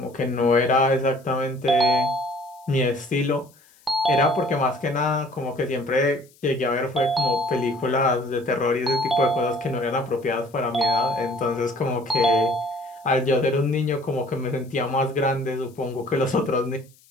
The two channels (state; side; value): noise; left; hiss, 30 dB below the sound